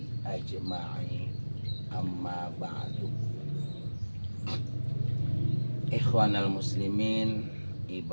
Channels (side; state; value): both; inverted; correlation -1.00